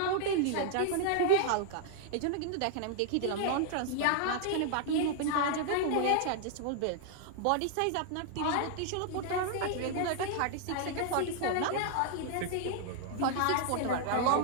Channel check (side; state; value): both; different; correlation 0.00